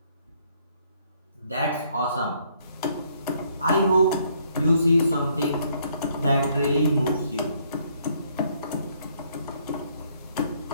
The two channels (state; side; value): inverted; both; correlation -0.67